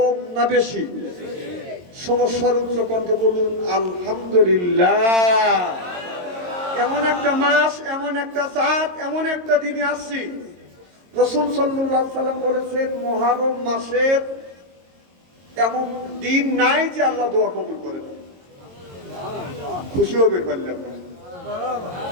না বেশি? সমস্যার উচ্চ কণ্ঠে বলুন আলহামদুলিল্লাহ। এমন একটা মাস, এমন একটা চাঁদ, এমন একটা দিনে আসছি, রাসূল সাল্লাল্লাহু আলাইহি সাল্লাম বলেছেন মুহররম মাসের এমন দিন নাই যে আল্লাহ দোয়া কবুল করে না। খুশি হবেন বললাম না?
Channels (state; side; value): late; left; 22 ms